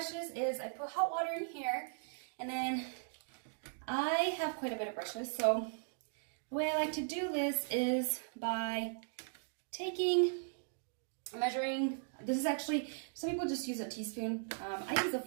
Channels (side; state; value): left; silent; digital silence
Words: is I put hot water in here, and then I have quite a bit of brushes. So the way I like to do this is by measuring. This is actually, some people just use a teaspoon. I use